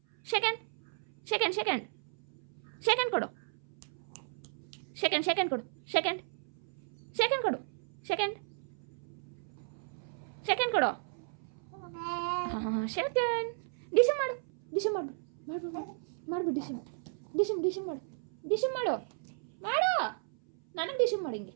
Second second second second ಕೊಡು second second ಕೊಡು second second ಕೊಡು ಸೆಕೆಂಡ್ ಸೆಕೆಂಡ್ ಕೊಡು ಹಾಂ ಸೆಕೆಂಡ್ ಡಿಶಮ್ ಮಾಡು ಡಿಶಮ್ ಮಾಡು ಮಾಡ್ಬಿಡು ಡಿಶಮ್ ಡಿಶಮ್ ಡಿಶಮ್ ಮಾಡು ಡಿಶಮ್ ಮಾಡು ಮಾಡು ನನಗೆ ಡಿಶಮ್ ಮಾಡಿ ಹಿಂಗೆ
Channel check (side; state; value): left; silent; 55 dB below the other